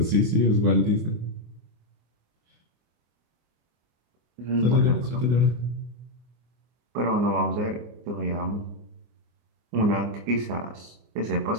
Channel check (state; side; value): late; left; 24 ms